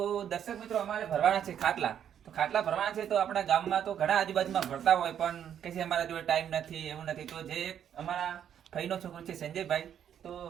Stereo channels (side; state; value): left; quieter; 9.3 dB